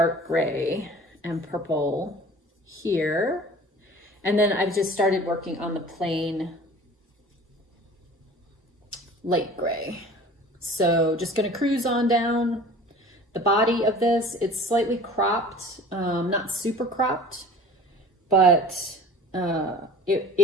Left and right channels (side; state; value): both; normal; correlation 0.44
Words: gray and purple here. And then I've just started working on the plain light gray. So just gonna cruise on down the body of this. It's slightly cropped, not super cropped, but